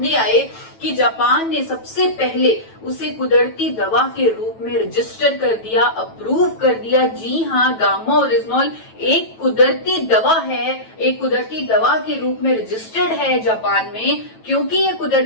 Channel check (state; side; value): late; right; 9.1 ms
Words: आए कि जापान ने सबसे पहले उसे कुदरती दवा के रूप में रजिस्टर कर दिया, अप्रूव कर दिया। जी हाँ, गामा ओरिजिनॉल एक कुदरती दवा है, एक कुदरती दवा के रूप में रजिस्टर्ड है जापान में। क्योंकि ये